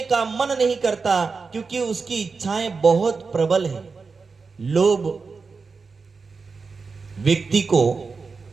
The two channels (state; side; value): quieter; left; 4.7 dB